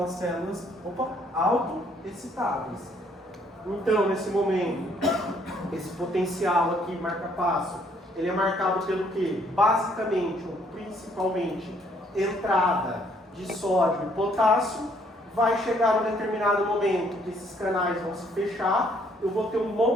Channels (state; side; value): normal; both; correlation 0.66